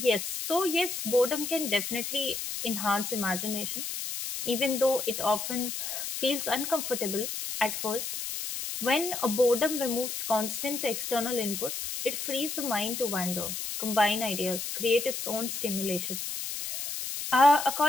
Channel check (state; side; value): noise; left; hiss, 5 dB below the sound